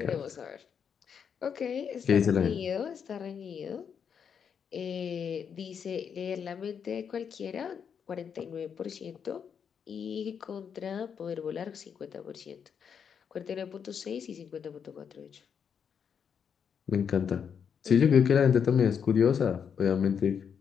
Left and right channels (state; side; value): quieter; right; 7.2 dB